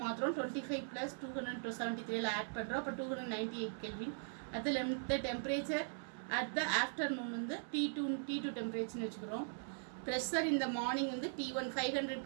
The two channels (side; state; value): left; silent; digital silence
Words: மாத்திரம் 25 plus 273 add பண்ணுறோம். அப்போ 298 kelvin. அதில் இந்த temperature at the afternoon வந்து T2 டெம்பரேச்சர்னு வச்சுக்கிறோம். ப்ரெஷர் இந்த மார்னிங் வந்து T1 500